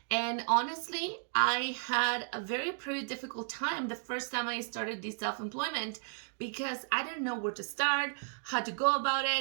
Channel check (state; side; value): silent; left; 55 dB below the other